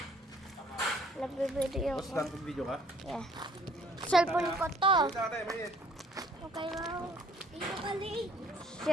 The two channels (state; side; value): normal; both; correlation 0.58